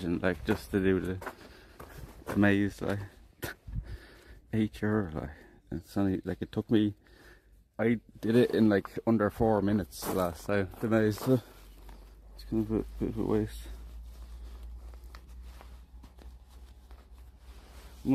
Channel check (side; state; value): both; identical; correlation 1.00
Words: like, just to do the maze, like, €8, like, it's only, like, it took me, I did it in, like, under 4 minutes last time, the maze, so it's kind of a bit of a waste. We